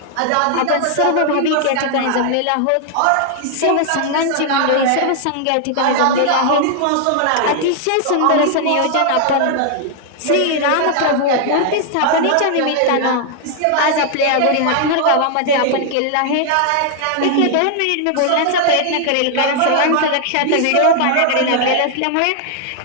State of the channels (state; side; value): different; both; correlation 0.00